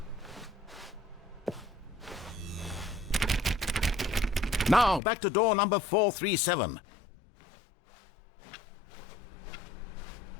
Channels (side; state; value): right; drops out; at 5.0 s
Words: Now, back to door number 437.